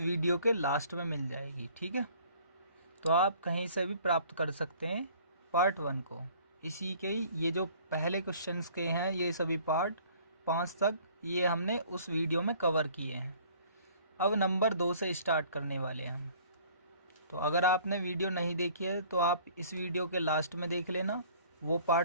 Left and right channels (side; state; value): both; inverted; correlation -0.54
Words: के लास्ट में मिल जाएगी। ठीक है, तो आप कहीं से भी प्राप्त कर सकते हैं पार्ट 1 को। इसी के ये जो पहले क्वेश्चंस के हैं, ये सभी पार्ट 5 तक ये हमने उस वीडियो में कवर किए हैं। अब नंबर 2 से स्टार्ट करने वाले हैं हम। तो अगर आपने वीडियो नहीं देखी है तो आप इस वीडियो के लास्ट में देख लेना वो